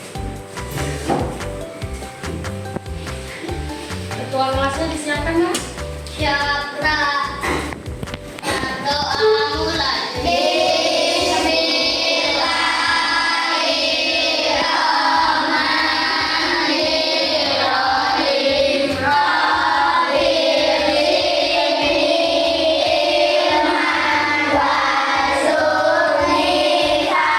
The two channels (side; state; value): both; identical; correlation 1.00